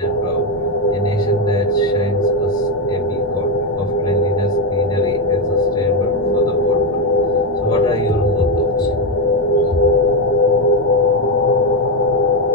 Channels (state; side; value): normal; both; correlation 0.07